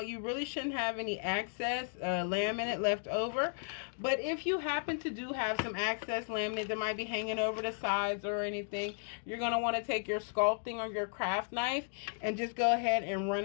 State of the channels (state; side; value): silent; right; digital silence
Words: you really shouldn't have any excess laminate left over. But if you happen to do have some excess laminate that might be hanging over the sides or anything, you're going to want to take your sculpting or your craft knife and just go ahead and run